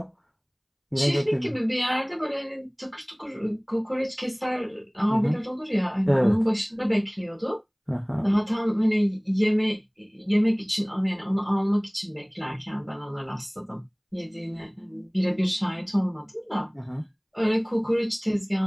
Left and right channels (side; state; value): both; identical; correlation 1.00